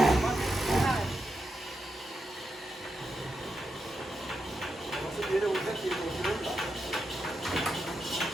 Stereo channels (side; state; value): both; normal; correlation 0.86